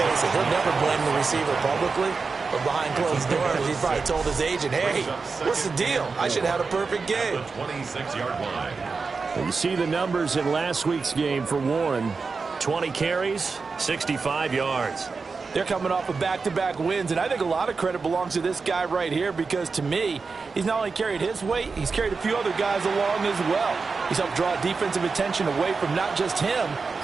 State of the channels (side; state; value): left; quieter; 4.6 dB